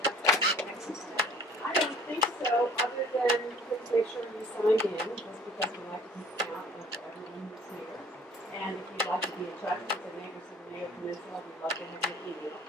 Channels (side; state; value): both; normal; correlation 0.52